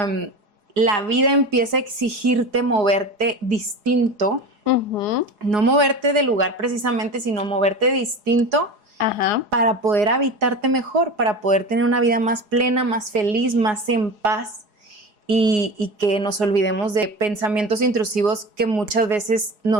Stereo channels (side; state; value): left; late; 4.8 ms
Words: vida empieza a exigirte moverte distinto, no moverte de lugar precisamente, sino moverte distinto. Ajá. Para poder habitarte mejor, para poder tener una vida más plena, más feliz, más en paz y que nos olvidemos de pensamientos intrusivos que muchas veces